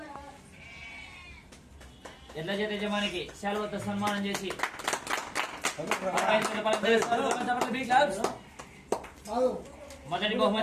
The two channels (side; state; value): both; identical; correlation 1.00